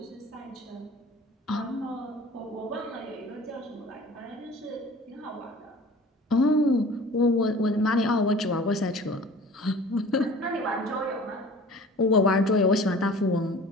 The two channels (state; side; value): normal; both; correlation 0.44